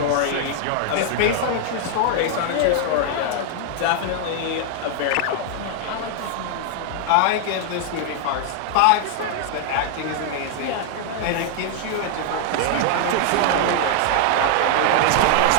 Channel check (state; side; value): different; both; correlation 0.00